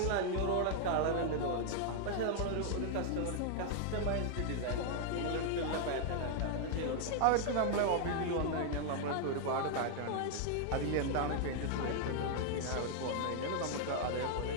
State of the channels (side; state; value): both; different; correlation 0.00